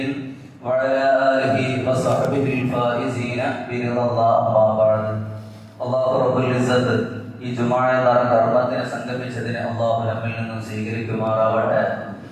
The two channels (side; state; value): both; identical; correlation 1.00